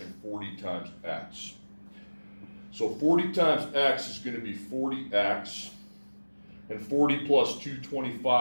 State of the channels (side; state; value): both; inverted; correlation -1.00